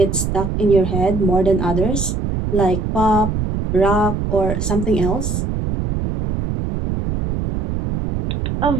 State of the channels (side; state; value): right; noise; rumble, 2 dB below the sound